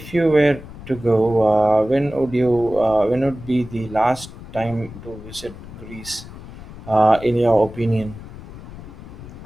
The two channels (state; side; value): noise; left; rumble, 15 dB below the sound